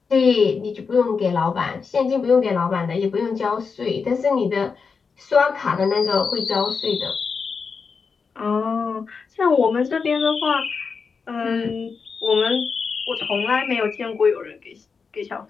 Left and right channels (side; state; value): right; quieter; 5.3 dB